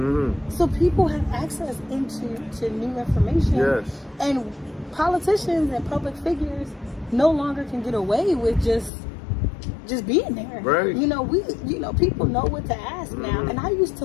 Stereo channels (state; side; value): drops out; right; at 8.9 s